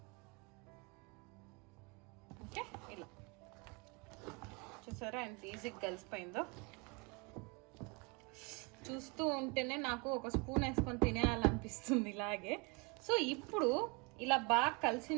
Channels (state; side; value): quieter; left; 30.0 dB